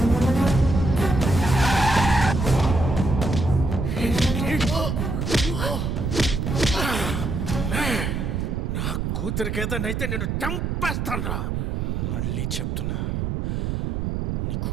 కూతురికి ఏదైతే నేను చంపేస్తాను. మళ్ళీ చెప్తున్నా, నీ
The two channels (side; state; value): right; noise; rumble, 1 dB below the sound